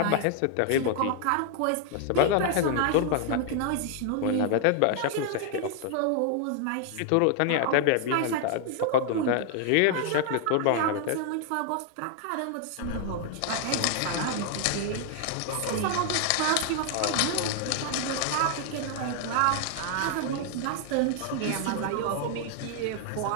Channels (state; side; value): different; both; correlation 0.00